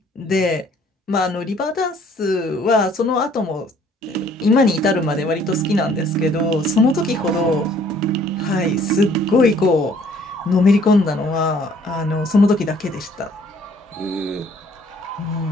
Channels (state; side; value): normal; both; correlation 0.60